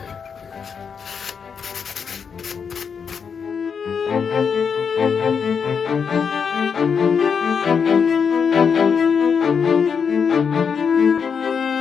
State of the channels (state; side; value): quieter; right; 6.4 dB